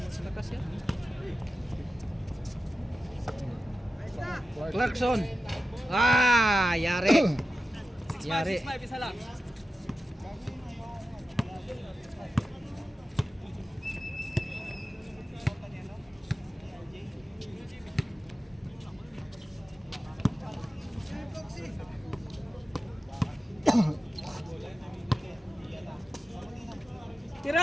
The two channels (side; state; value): both; normal; correlation 0.93